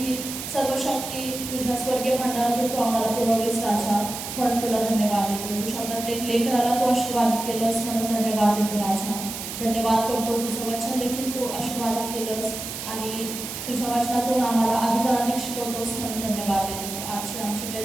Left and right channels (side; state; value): right; noise; hiss, 7 dB below the sound